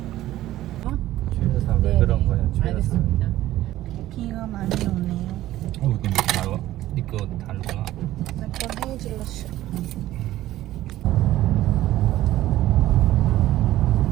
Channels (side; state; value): left; quieter; 14.8 dB